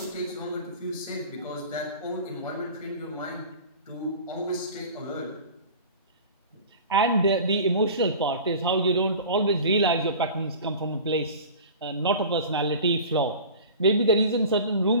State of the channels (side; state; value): both; inverted; correlation -0.38